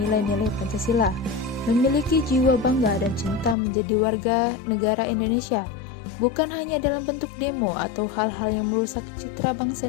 Pancasila, memiliki jiwa bangga dan cinta menjadi warga negara Indonesia, bukan hanya dalam bentuk demo atau hal-hal yang merusak citra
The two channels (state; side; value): drops out; right; at 3.6 s